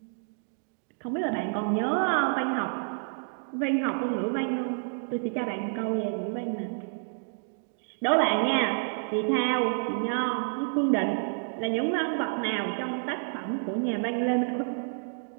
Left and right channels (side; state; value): left; silent; digital silence